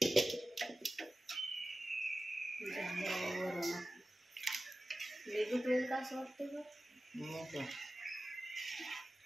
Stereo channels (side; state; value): both; normal; correlation 0.95